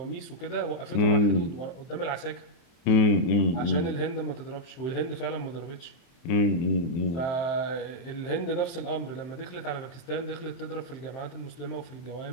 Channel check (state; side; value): late; right; 23 ms